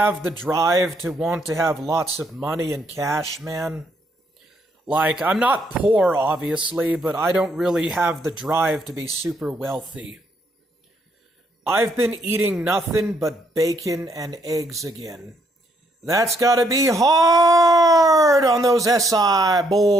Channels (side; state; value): both; normal; correlation 0.72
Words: the drive to want to have lots of money and cash, man. Like, I'm not poor, obviously, but I don't really have the drive to be super wealthy. I've been eating nothing but bacon and eggs again. That's gotta be hard on those SI